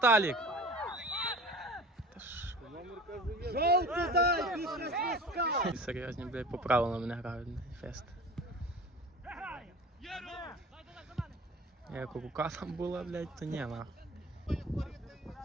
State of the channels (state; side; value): normal; both; correlation 0.39